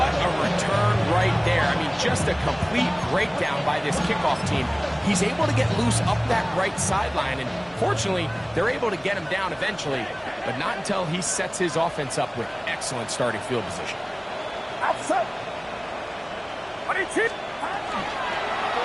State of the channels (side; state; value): both; identical; correlation 1.00